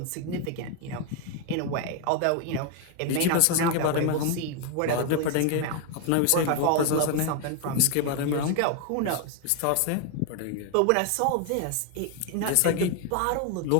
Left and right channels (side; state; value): both; different; correlation 0.01